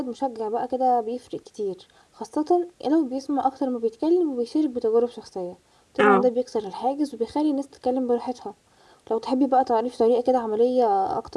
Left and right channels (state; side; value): identical; both; correlation 1.00